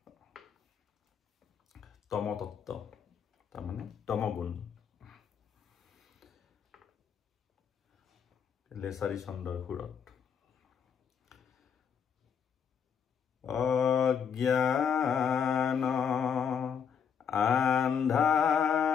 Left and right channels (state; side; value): quieter; right; 7.2 dB